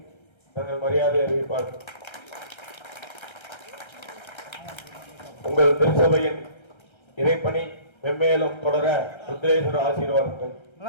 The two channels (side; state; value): right; late; 1.3 ms